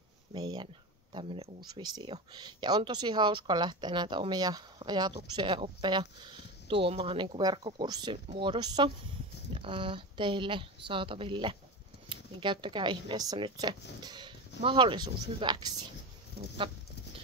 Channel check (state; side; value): normal; both; correlation 0.23